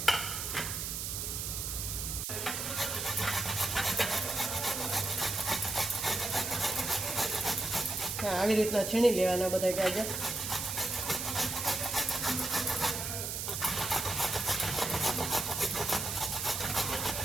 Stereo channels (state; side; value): noise; right; hiss, 3 dB below the sound